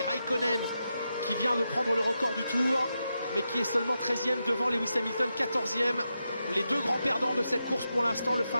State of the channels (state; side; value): inverted; both; correlation -0.87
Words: Raikkonen qui vient de prendre le record du tour, mais qui est seulement 13e devant Lewis Hamilton, 14e. Les deux grands perdants de cette course pour l'instant, le